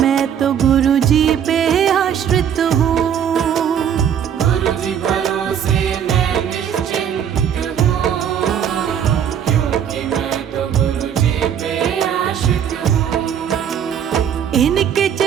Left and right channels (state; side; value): quieter; left; 8.8 dB